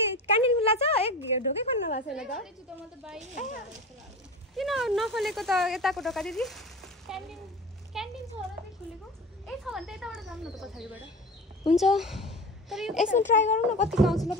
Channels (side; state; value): both; normal; correlation 0.31